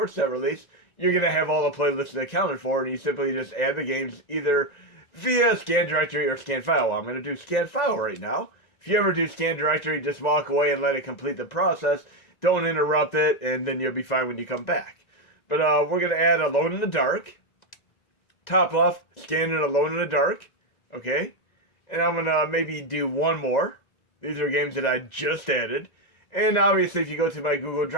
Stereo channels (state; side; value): late; right; 2.0 ms